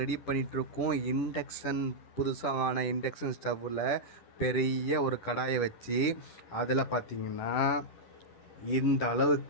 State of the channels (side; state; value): right; late; 10 ms